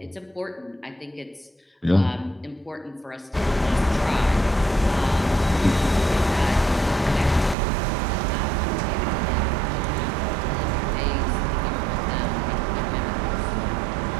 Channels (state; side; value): drops out; left; at 7.6 s